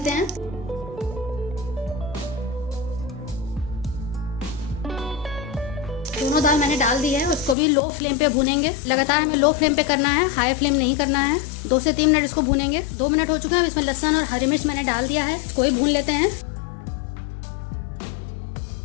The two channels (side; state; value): right; drops out; at 7.6 s